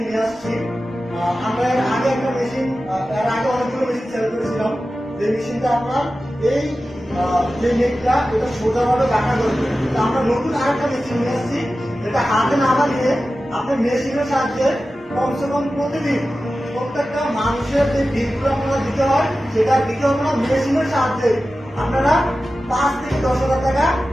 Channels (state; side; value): normal; both; correlation 0.94